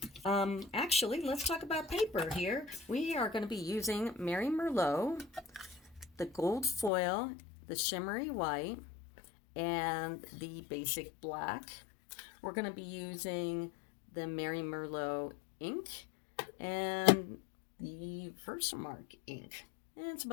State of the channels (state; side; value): drops out; right; at 6.9 s